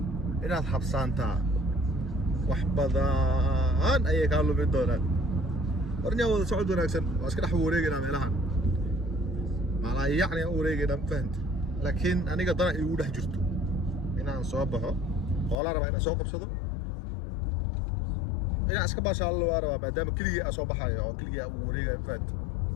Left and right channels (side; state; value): right; drops out; at 15.6 s